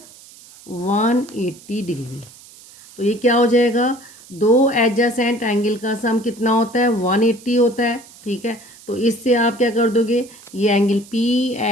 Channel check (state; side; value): noise; right; hiss, 22 dB below the sound